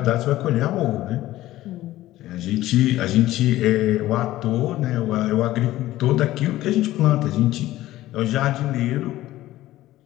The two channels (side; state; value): right; quieter; 15.5 dB